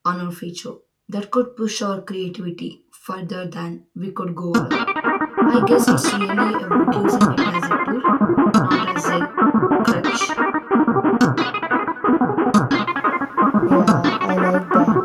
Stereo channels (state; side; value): identical; both; correlation 1.00